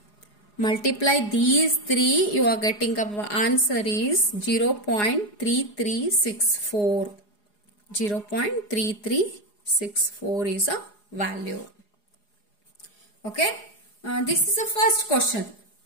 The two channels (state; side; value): late; right; 4.8 ms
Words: Multiply these 3, you are getting a answer is 0.3364. 0.3364 is a value. Okay, this is the first question.